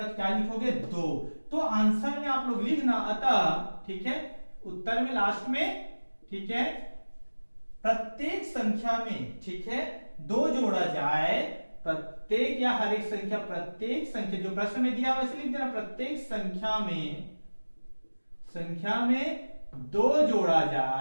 तो क्या लिखोगे 2। तो आंसर में आप लोग लिखना अतः, ठीक है, उत्तर में लास्ट में, ठीक है, प्रत्येक संख्या में, ठीक है, 2 जोड़ा जाए, प्रत्येक या हर एक संख्या, प्रत्येक संख्या जो प्रश्न में दिया वैसे लिख देना, प्रत्येक संख्या में 2 जोड़ा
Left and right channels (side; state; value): both; inverted; correlation -1.00